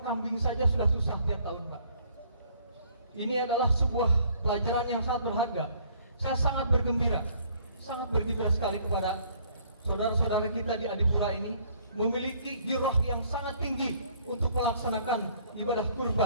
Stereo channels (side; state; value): both; inverted; correlation -0.61